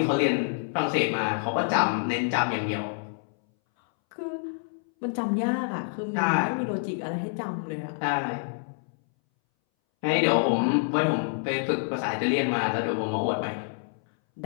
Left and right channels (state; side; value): silent; right; 60 dB below the other